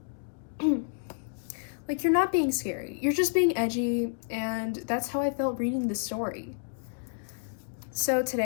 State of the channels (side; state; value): right; silent; 58 dB below the other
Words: Like, you're not being scary. You're just being edgy, and that's how I felt reading this story. So